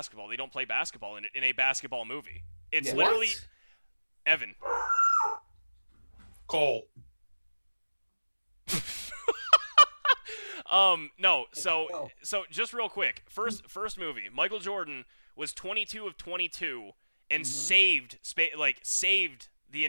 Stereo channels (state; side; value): inverted; both; correlation -1.00